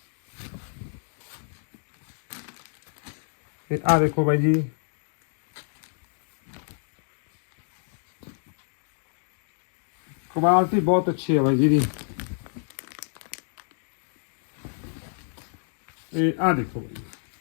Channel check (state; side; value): silent; right; digital silence